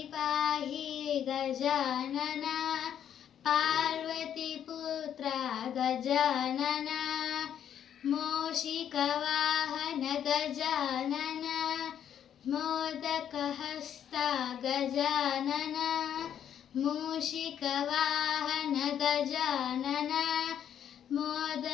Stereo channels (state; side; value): quieter; right; 9.5 dB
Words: गजानन पार्वतीपुत्र गजानन मूषिकवाहन गजानन मोदकहस्त गजानन मूषिकवाहन गजानन